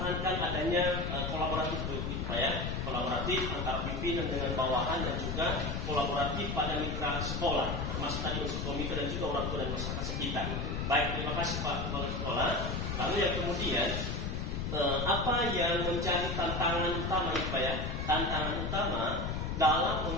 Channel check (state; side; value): noise; left; rumble, 2 dB below the sound